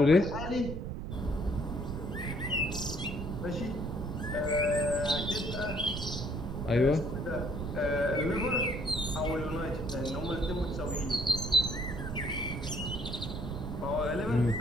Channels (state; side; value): noise; right; rumble, 5 dB below the sound